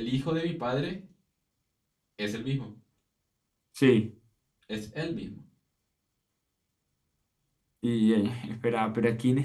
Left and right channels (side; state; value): both; identical; correlation 1.00